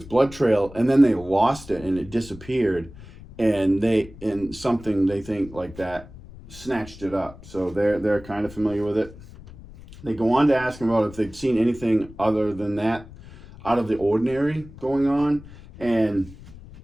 blood trail, and then they lost it and it disappeared. and something they think like that snatched it up. So they're kind of familiar with it. They go on to ask him about if they'd seen anything other than that out of the ordinary going on, and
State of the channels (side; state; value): left; noise; rumble, 18 dB below the sound